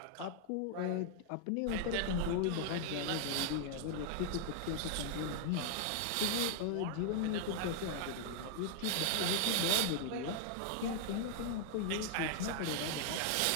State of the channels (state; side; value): different; both; correlation -0.01